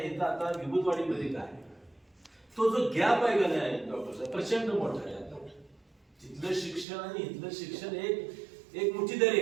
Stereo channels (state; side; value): drops out; left; at 6.9 s